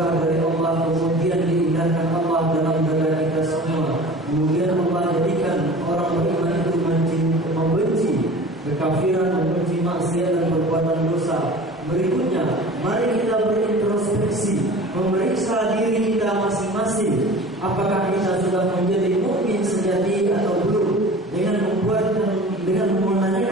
dari Allah, kemudian diindahkan Allah dalam dada kita semua, kemudian Allah jadikan orang beriman itu membenci kekafiran, membenci maksiat dan perbuatan dosa. Berikutnya, mari kita berintrospeksi, memeriksa diri kita masing-masing. Apakah kita sudah menjadi mukmin sejati atau belum? Dengan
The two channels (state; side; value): normal; both; correlation 0.41